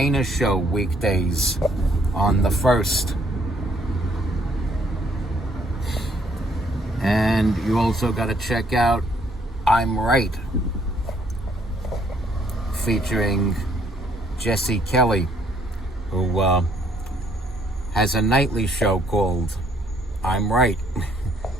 Show weekdays on the 1st. And you also got to check out I'm Right, featuring Jesse Kelly, who has a nightly show called I'm Right.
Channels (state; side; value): normal; both; correlation 0.66